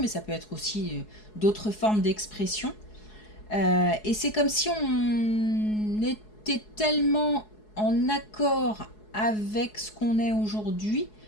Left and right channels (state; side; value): late; right; 4.7 ms